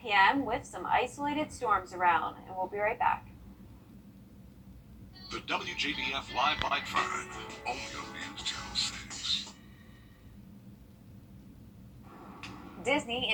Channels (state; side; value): identical; both; correlation 1.00